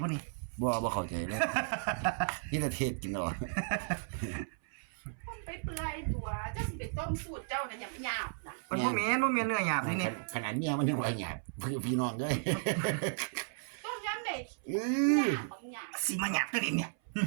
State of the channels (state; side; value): silent; left; 55 dB below the other